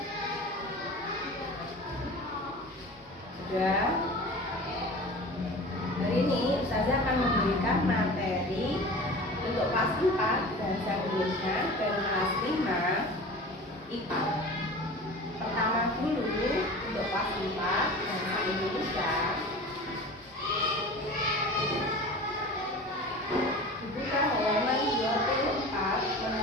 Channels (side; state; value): both; normal; correlation 0.37